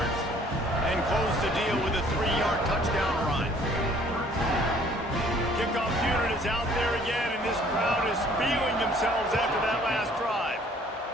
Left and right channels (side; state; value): both; normal; correlation 0.57